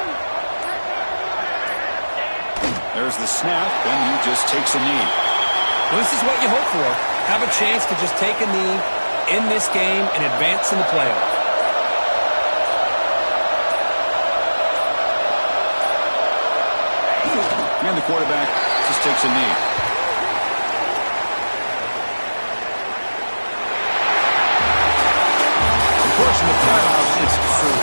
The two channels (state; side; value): inverted; both; correlation -1.00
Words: There's the snap, and he just takes a knee. Well, this is what you hope for. Have a chance to just take a knee in this game and advance in the playoffs. And the quarterback just takes a knee. Of course, in the playoffs, it's